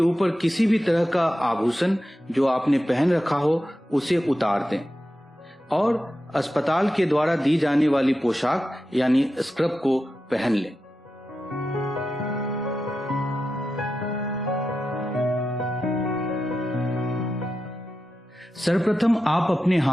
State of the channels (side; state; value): both; normal; correlation 0.90